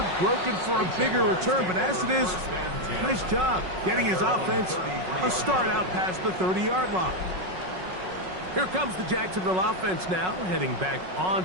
broken for a bigger return, but as it is, nice job getting his offense a start out past the 30-yard line. Here comes the Jacksonville offense now, heading back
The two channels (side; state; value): left; late; 5.4 ms